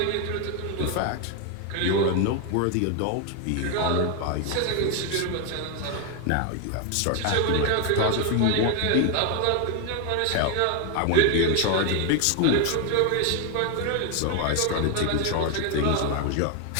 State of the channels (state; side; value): different; both; correlation 0.01